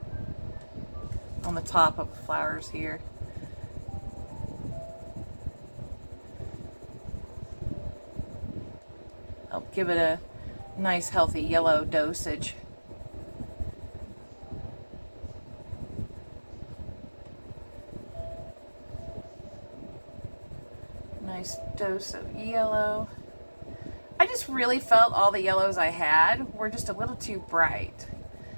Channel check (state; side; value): inverted; both; correlation -1.00